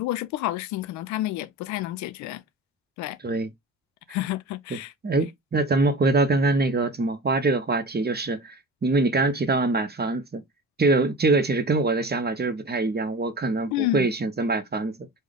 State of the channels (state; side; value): normal; both; correlation 0.33